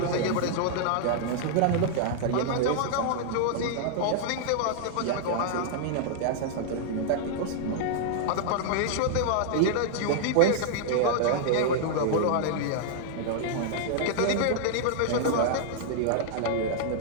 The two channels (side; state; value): both; different; correlation -0.01